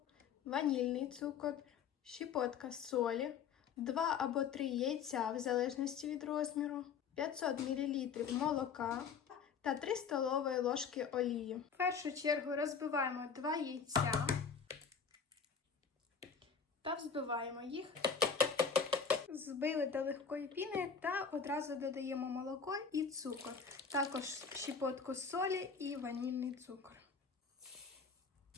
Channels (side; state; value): right; quieter; 6.1 dB